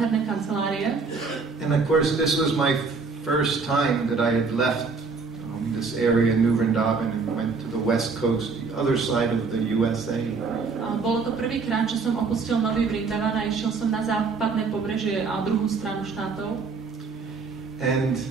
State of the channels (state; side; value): quieter; left; 4.6 dB